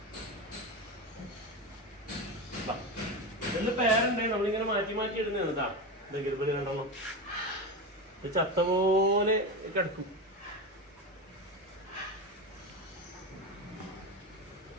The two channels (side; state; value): both; normal; correlation 0.20